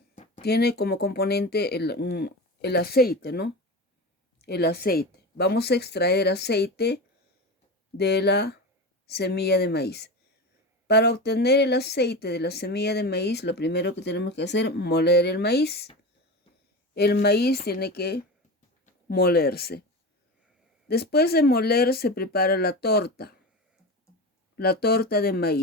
como componente el aceite, ¿no? El aceite. Vamos a extraer aceite de la semilla de maíz. Para obtener el aceite de la semilla de maíz, lo primero que tenemos que hacer es moler el maíz. El maíz tiene que molerse. Después de moler se prepara la torta de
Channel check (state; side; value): normal; both; correlation 0.26